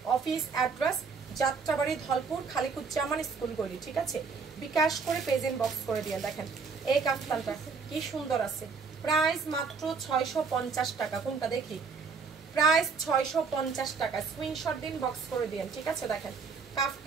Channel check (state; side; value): quieter; left; 5.1 dB